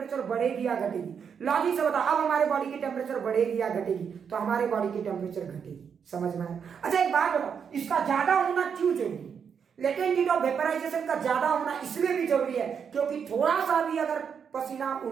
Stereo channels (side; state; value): left; quieter; 7.0 dB